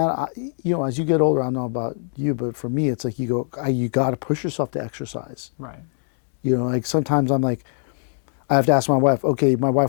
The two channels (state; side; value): silent; right; 64 dB below the other